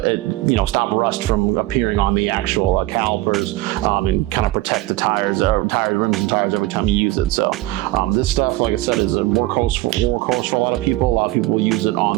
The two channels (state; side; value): quieter; left; 17.9 dB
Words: rust from appearing on the actual calipers and kind of protect the tires, rims and tires every time you use it. So this stuff, like I said, is a workhorse for a lot of people. A lot of people will use it